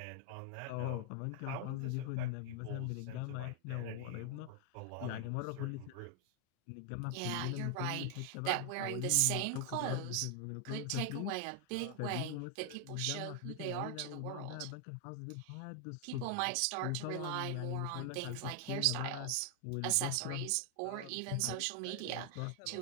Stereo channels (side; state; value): both; different; correlation 0.00